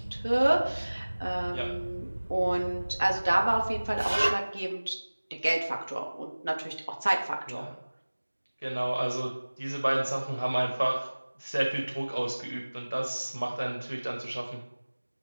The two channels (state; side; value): inverted; both; correlation -1.00